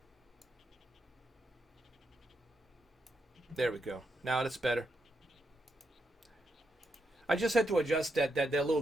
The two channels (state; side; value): normal; both; correlation 0.83